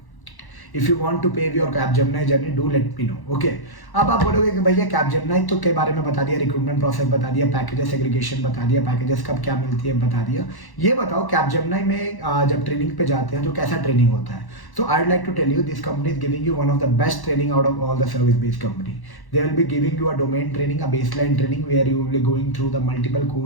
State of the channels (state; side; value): late; right; 1.1 ms